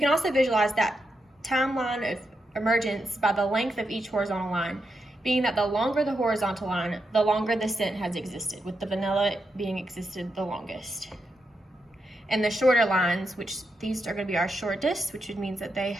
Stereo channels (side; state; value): both; normal; correlation 0.85